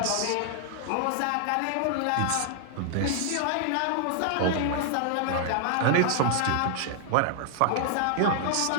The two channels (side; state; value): both; different; correlation -0.01